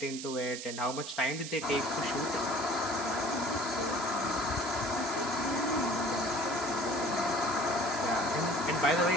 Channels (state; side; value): noise; right; hiss, 8 dB below the sound